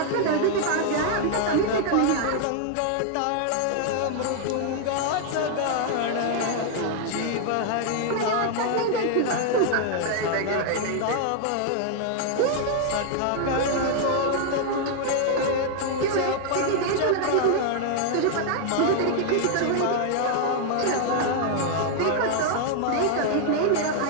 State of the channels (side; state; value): both; different; correlation 0.00